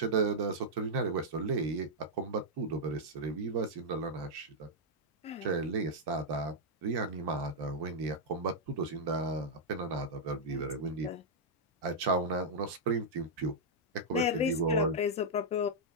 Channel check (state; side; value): normal; both; correlation -0.06